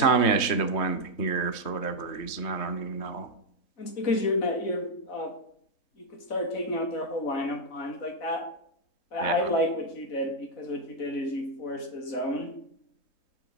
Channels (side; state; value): right; late; 3.2 ms